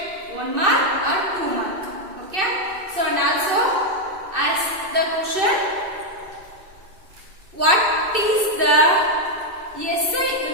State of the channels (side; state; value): left; late; 2.6 ms